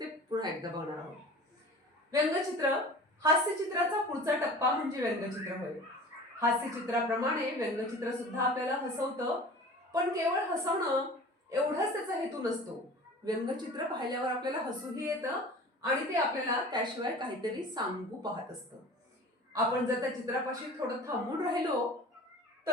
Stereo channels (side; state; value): both; normal; correlation 0.41